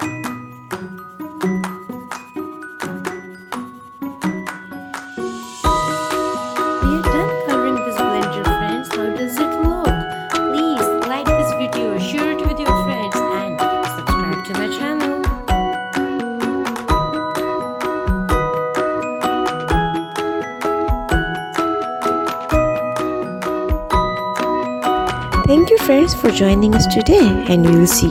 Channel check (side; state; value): both; identical; correlation 1.00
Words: We are done coloring this blender, friends. How does it look? Please like this video, share it with your friends, and subscribe to my channel. Thank you friends for joining us today, and we will see